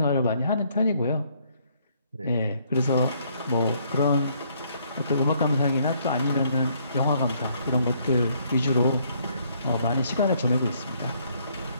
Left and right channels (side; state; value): both; inverted; correlation -0.67